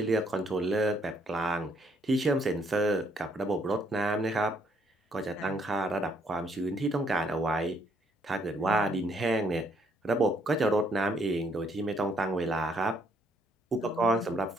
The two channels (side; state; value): both; normal; correlation 0.69